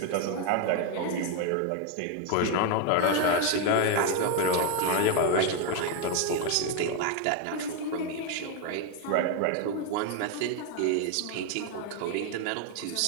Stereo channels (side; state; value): both; different; correlation 0.01